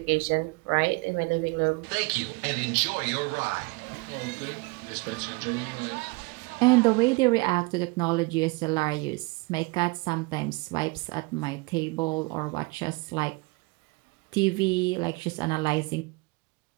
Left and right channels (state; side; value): quieter; left; 26.5 dB